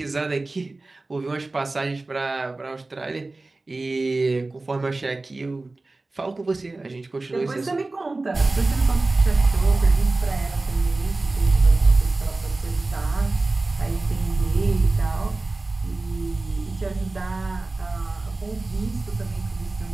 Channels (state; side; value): quieter; left; 3.2 dB